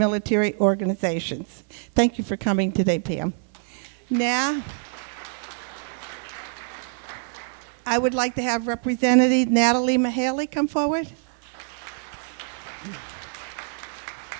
organizations. Thank you for coming today, Pam. Now, I would like to have Representative Natalie Mahaley come forward.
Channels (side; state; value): left; silent; digital silence